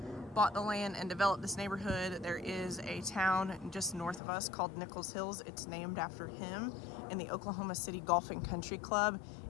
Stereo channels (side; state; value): right; drops out; at 4.2 s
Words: bought the land and developed this neighborhood, there is a town just north of us called Nichols Hills. It's named after him, and the Oklahoma City Golf and Country Club